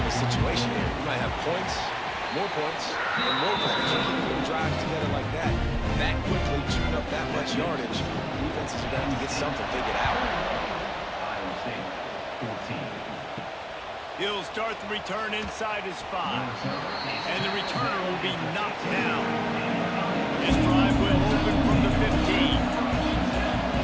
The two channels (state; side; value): identical; both; correlation 1.00